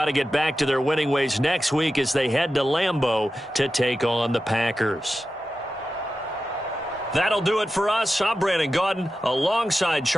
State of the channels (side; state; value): both; normal; correlation 0.92